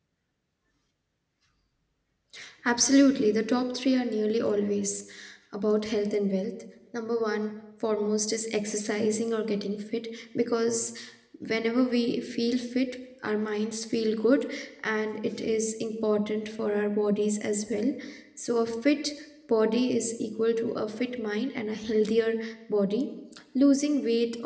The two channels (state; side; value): identical; both; correlation 1.00